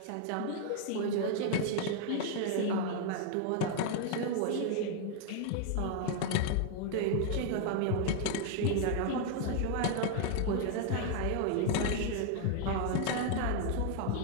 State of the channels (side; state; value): both; different; correlation 0.00